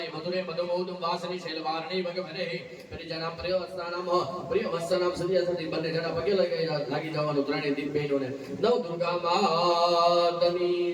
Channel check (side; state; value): both; identical; correlation 1.00